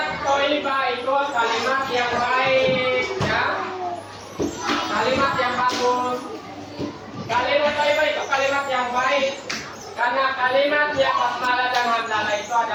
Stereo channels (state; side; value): identical; both; correlation 1.00